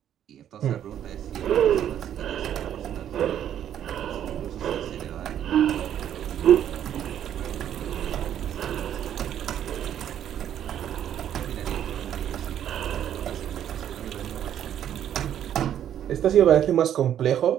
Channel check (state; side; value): quieter; left; 10.3 dB